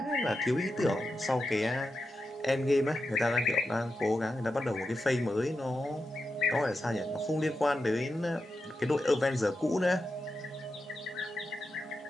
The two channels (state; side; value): normal; both; correlation 0.89